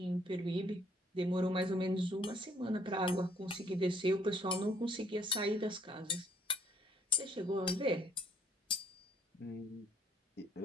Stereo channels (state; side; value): normal; both; correlation 0.63